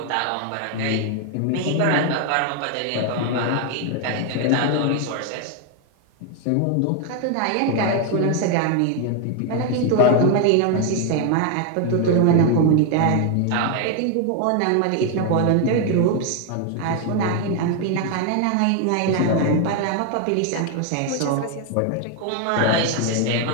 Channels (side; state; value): both; different; correlation 0.01